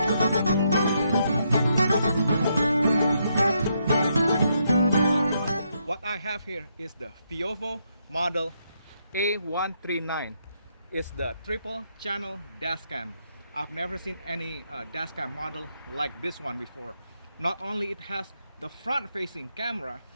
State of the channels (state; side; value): inverted; both; correlation -0.77